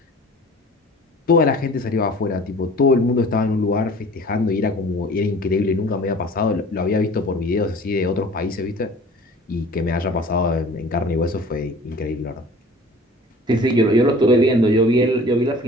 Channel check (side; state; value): both; normal; correlation 0.45